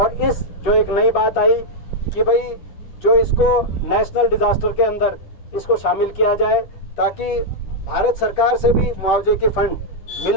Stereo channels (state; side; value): late; right; 10 ms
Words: इस जो एक नई बात आई कि भाई जो इसको नेशनल डिजास्टर के अंदर इसको शामिल किया जाए, ताकि भारत सरकार से भी मुआवजे के फंड